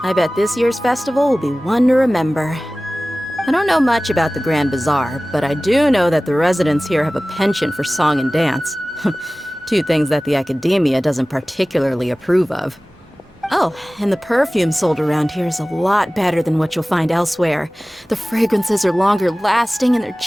I bet this year's festival will be one to remember. I don't know much about the Grand Bazaar, but I do know that the residents here have a penchant for song and dance. Two things that the Academia doesn't particularly approve of. Oh, and the perfume sold around here is a lot better than what you'll find elsewhere. The fragrances are longer lasting and they're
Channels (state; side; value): normal; both; correlation 0.98